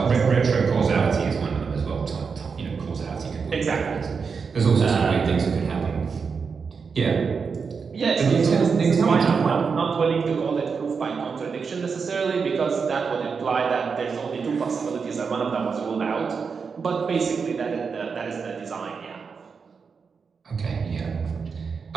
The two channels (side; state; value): left; quieter; 5.5 dB